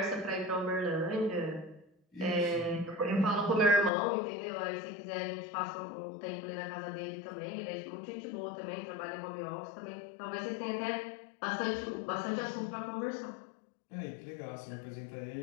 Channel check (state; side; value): drops out; right; at 3.9 s